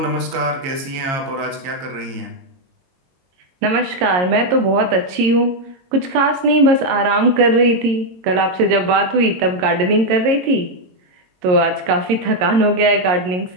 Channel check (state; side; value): late; left; 22 ms